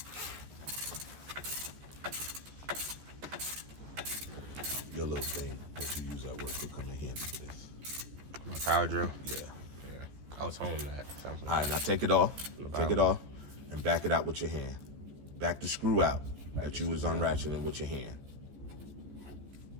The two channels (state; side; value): late; left; 14 ms